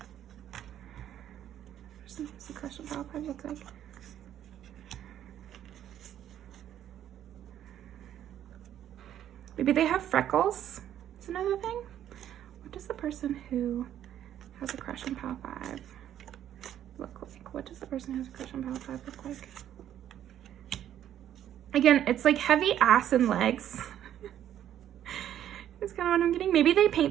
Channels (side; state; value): left; quieter; 10.9 dB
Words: Person who has a crush on Pile 5 look like? Maybe they have freckles. Is another thing. What does the person who has a crush on Pile 5 look like? What does the person who has a crush on Pile 5 look like? Again, it's like heavy ass and legs. That's kind of what I'm getting. Maybe they